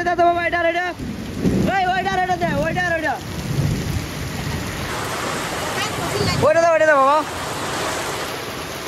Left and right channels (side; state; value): both; identical; correlation 1.00